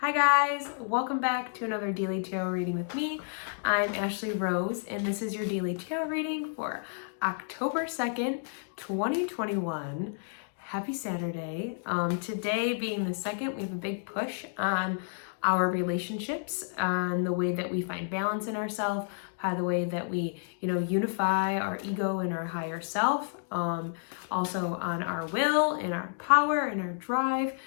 Hi guys, welcome back to another daily tarot reading with me. I'm Ashley Rose and this is your daily tarot reading for October 2nd, 2021. Happy Saturday. Today being the 2nd, we have a big push on our relationships, on the way that we find balance in ourselves, by the way that we, unify our ego and our higher self, also on our will and our power and our drive,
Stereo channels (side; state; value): right; silent; digital silence